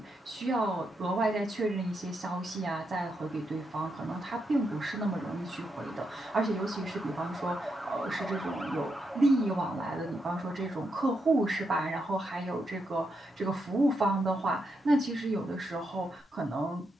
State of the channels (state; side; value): normal; both; correlation 0.82